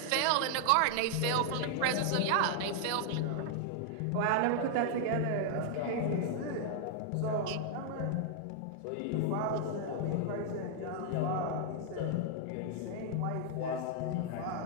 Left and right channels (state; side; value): different; both; correlation 0.00